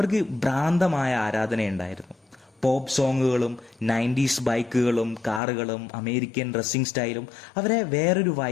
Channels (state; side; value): drops out; right; at 5.4 s